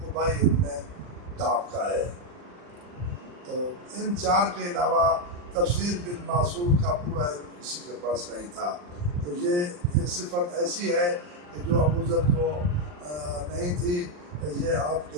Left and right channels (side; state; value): left; late; 40 ms